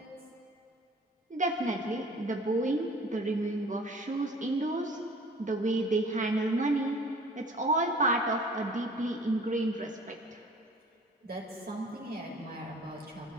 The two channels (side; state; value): both; normal; correlation 0.48